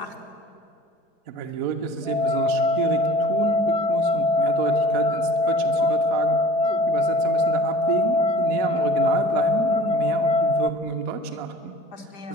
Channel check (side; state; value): right; late; 4.2 ms